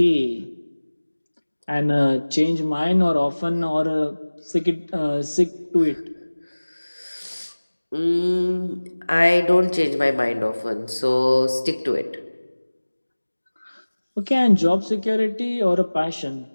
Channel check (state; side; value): inverted; both; correlation -1.00